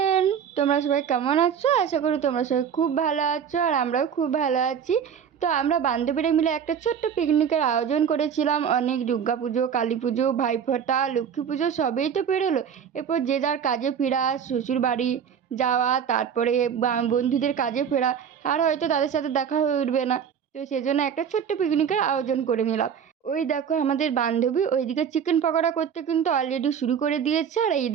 তোমরা সবাই কেমন আছো? আশা করি তোমরা সবাই খুব ভালো আছো আর আমরাও খুব ভালো আছি। তো আমরা বান্ধবীরা মিলে একটা ছোট্ট পিকনিকের আয়োজন করেছিলাম। অনেক দুর্গা পুজো, কালী পুজো, ভাইফোঁটা, লক্ষ্মী পুজো সবই তো পেরোলো। এরপর যে যার কাজে ফেরা, শ্বশুর বাড়ি যাওয়া, তারপরে বন্ধুদের কাজে ফেরা, আর হয়তো তাদের সাথে দেখা হয়ে উঠবে না। তো সেজন্য একটা ছোট্ট পিকনিকের আয়োজন করে নিলাম। ওই দেখো আমাদের বান্ধবী ওইদিকে চিকেন পকোড়া করতে কিন্তু অলরেডি শুরু করে দিয়েছে, আর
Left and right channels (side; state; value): left; quieter; 7.8 dB